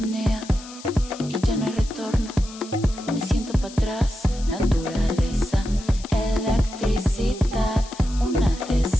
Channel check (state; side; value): noise; left; hiss, 17 dB below the sound